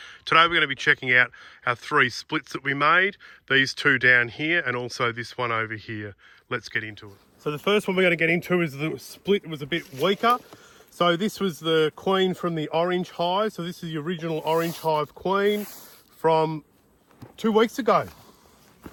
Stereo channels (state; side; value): identical; both; correlation 1.00